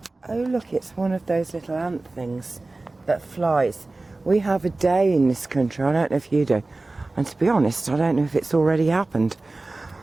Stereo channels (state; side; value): quieter; left; 3.2 dB